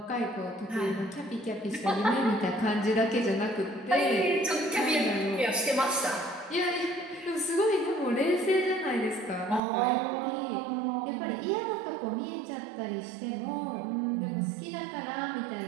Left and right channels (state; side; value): drops out; left; at 9.6 s